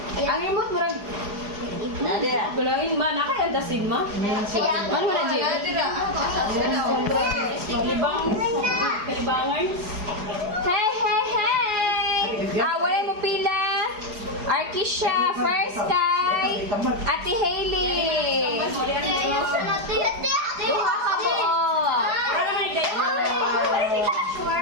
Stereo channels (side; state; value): left; late; 4.8 ms